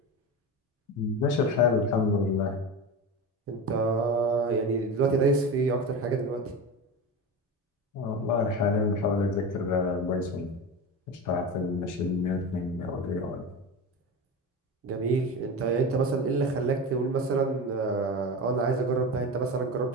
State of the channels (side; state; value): both; normal; correlation 0.24